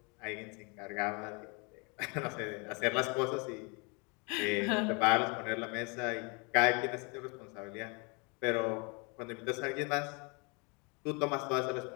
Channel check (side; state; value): right; quieter; 31.6 dB